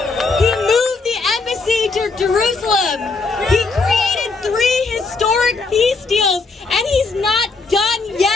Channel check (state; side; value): quieter; right; 4.0 dB